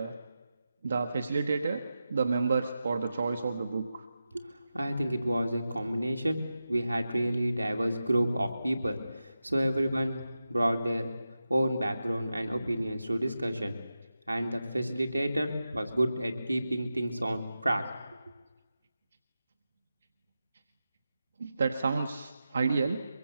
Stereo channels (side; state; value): both; inverted; correlation -0.91